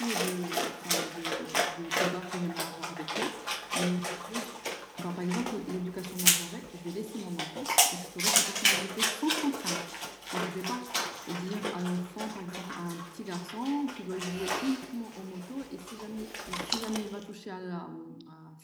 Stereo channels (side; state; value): both; identical; correlation 1.00